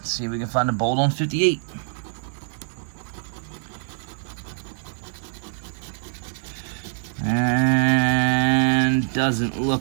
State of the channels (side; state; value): left; silent; digital silence